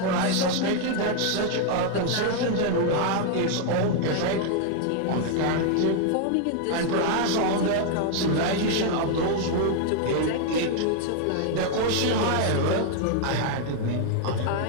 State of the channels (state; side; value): different; both; correlation 0.00